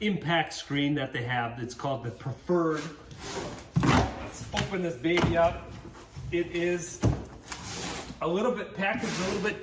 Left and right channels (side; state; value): both; identical; correlation 1.00